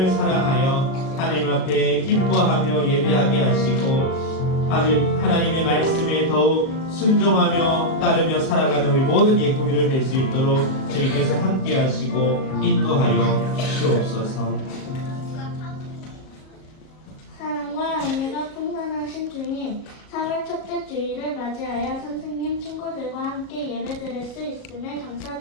사랑하여 하나님 앞에 기뻐하며 예배하게 하시고 하나님의 말씀에 더욱 순종하며 따르며 살아가는 우리 모든 예꾸미를 될 수 있도록 주님께서 함께 하시고 인도하여 주시옵소서. 사랑과 은혜가 풍성하신 주님, 4월 첫째 주일을 맞이하여 선생님, 친구들과 함께 예배드릴 수 있음에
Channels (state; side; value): late; right; 38 ms